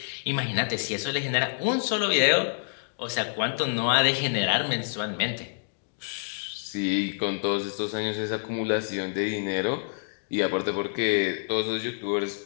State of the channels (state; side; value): silent; right; digital silence